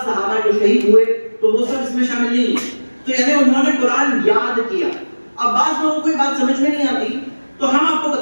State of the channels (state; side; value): inverted; both; correlation -1.00